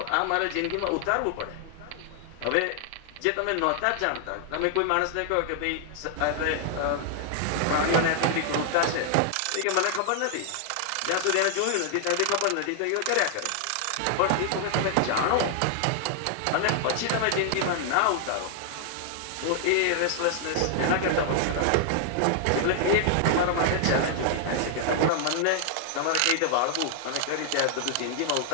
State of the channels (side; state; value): both; different; correlation 0.00